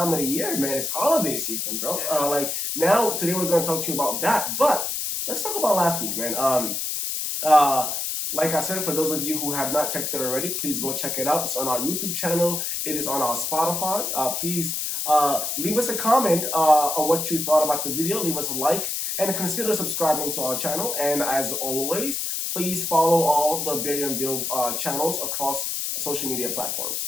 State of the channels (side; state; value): left; noise; hiss, 2 dB below the sound